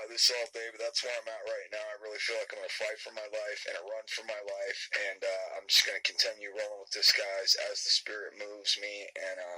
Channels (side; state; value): both; identical; correlation 1.00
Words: this all day, but that's where I'm at right now. I really feel like I'm going to fight for my life and run for my life, and I'm just going to continue rolling with this, guys, as the spirit moves me. And